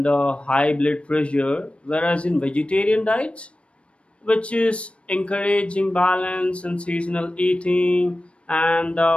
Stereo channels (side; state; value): right; late; 0.060 ms